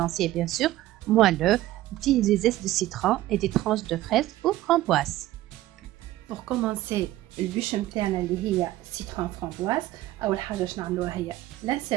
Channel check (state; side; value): quieter; left; 15.5 dB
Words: bien sûr, moelleux, des zestes de citron et des tranches de fraises ou framboises. Pour commencer البûche نتاعنا اللي هي citron framboise أول حاجة باش نعملوها هي